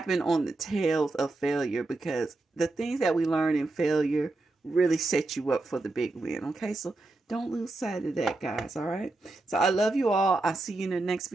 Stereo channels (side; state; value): left; quieter; 3.0 dB